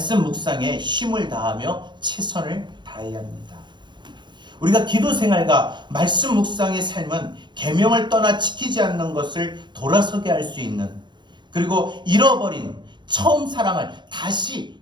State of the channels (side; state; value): left; late; 0.22 ms